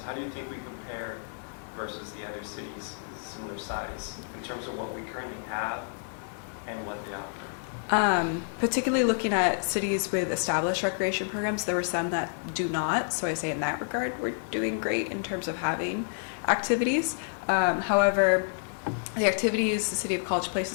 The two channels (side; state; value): right; silent; digital silence